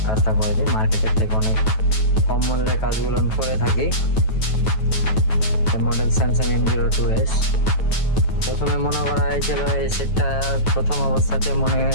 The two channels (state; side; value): late; right; 9.2 ms